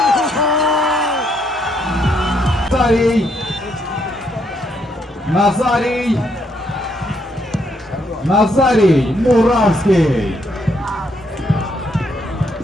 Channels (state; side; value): normal; both; correlation 0.74